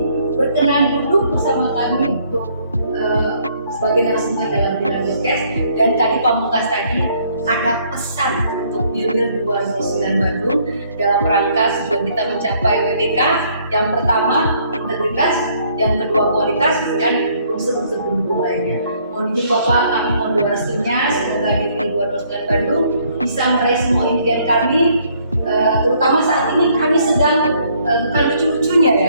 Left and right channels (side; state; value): both; inverted; correlation -0.65